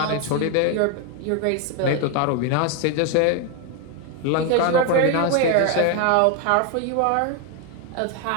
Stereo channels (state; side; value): different; both; correlation 0.01